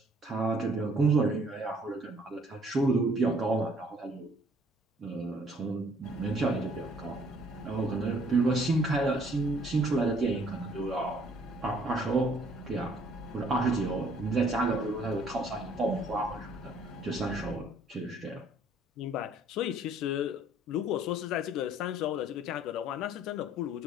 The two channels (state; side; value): normal; both; correlation 0.60